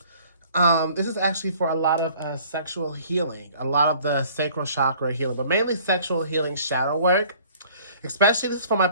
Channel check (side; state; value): both; inverted; correlation -0.53